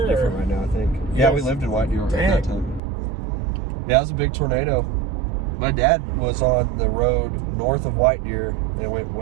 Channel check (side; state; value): left; drops out; at 2.8 s